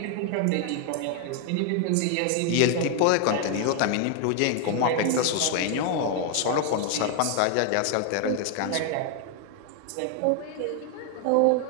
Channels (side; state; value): both; different; correlation 0.00